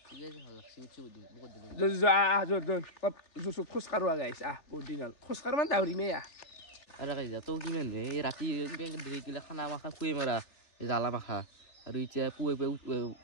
জো খোজ কাৰোৱা গাইছ বহুত দিন হ'ল খোজ কাৰোঁ মানে দাউৰি মে আৰু কাইজা তো কিমান নে ৰাতি গিলা খানা মাখা খুই মাৰা জ্বালা মাখা আৰু এতিয়া পুৱে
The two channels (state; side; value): late; right; 3.4 ms